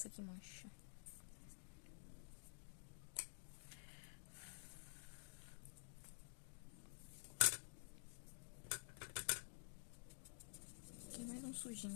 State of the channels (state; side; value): silent; right; digital silence